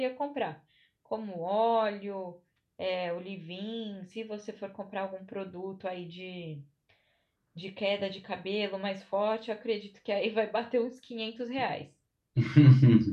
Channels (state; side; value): identical; both; correlation 1.00